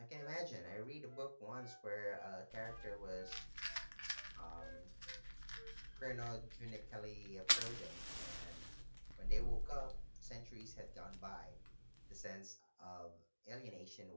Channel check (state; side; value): inverted; both; correlation -1.00